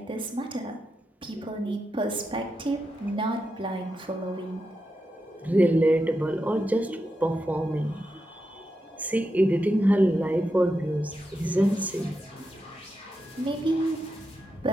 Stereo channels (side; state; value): both; normal; correlation 0.87